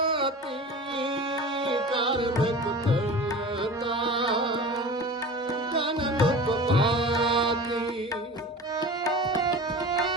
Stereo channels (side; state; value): both; normal; correlation 0.35